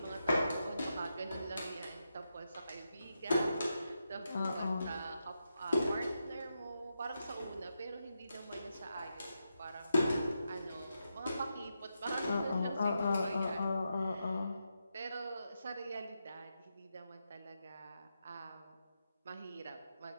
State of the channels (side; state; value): both; inverted; correlation -0.85